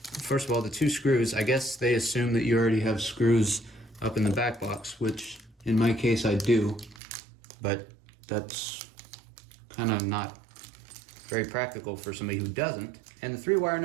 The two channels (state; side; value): drops out; left; at 7.0 s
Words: of all, the 2 screws, I guess they assume that you already have screws up in the back box, which in my case I do, but that's kind of not very practical for somebody who doesn't. And the 3 wire